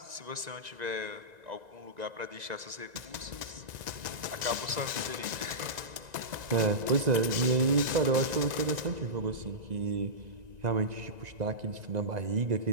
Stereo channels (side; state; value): left; late; 1.9 ms